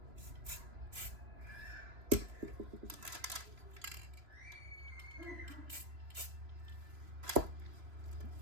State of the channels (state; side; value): late; left; 3.0 ms